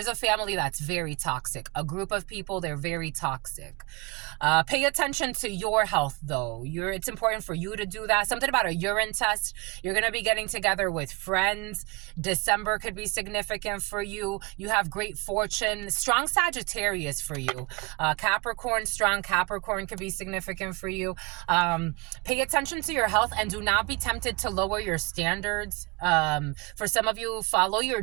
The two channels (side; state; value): left; quieter; 27.7 dB